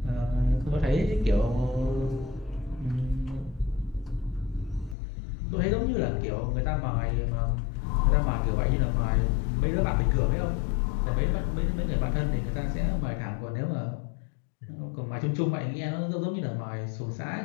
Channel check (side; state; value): right; drops out; at 5.0 s